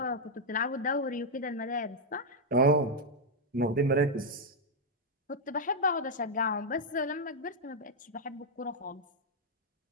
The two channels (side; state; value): both; normal; correlation -0.02